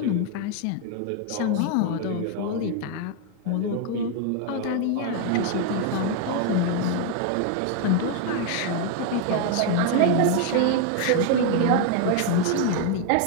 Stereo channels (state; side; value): different; both; correlation 0.00